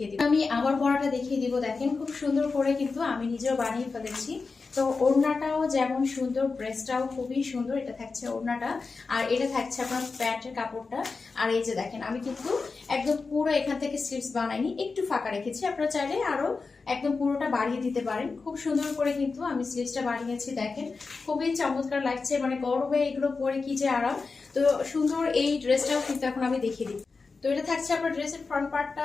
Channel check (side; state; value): right; quieter; 4.3 dB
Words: দিব। আমি আমার পরাটা দেখিয়ে দিব। দেখেন খুব সুন্দর করে কিন্তু আমি নিজেও বানিয়ে ফেলেছি। তো ওড়নাটাও যেমন সুন্দর, ড্রেসটাও খুবই সুন্দর। এটা থাকছে ওড়নাটা, আর এটা থাকছে আপনার প্যান্টের কাপড়টা। আর এই যে দেখেন আমি কিন্তু একদম পুরো এখান থেকে স্লিভস বানাইনি, একটু ফাঁকা রেখেছি। আপনারা চাইলে আরো একদম পুরোটা বাড়িয়ে দিতে পারেন। খুব সুন্দর করে কিন্তু আমি স্লিভসটা বানিয়েছি। দেখেন খুবই চমৎকার লাগছে, মানে গরমে এগুলো পরে কি যে আরাম। তো সুন্দর এই ড্রেসটাও কিন্তু এখন আমি দেখিয়ে দিই। তো এটা থাকছে আপনার ড্রেসের ফ্রন্ট